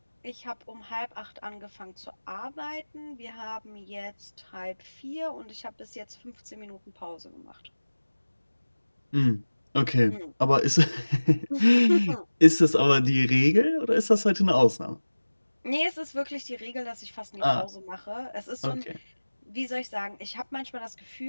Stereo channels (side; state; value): both; inverted; correlation -1.00